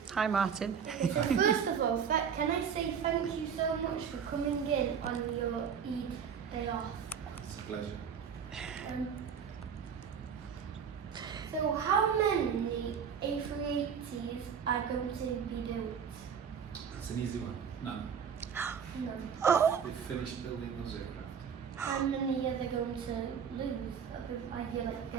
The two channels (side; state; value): left; quieter; 7.2 dB